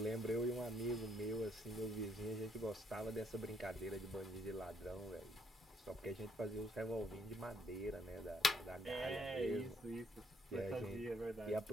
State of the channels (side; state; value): both; normal; correlation 0.70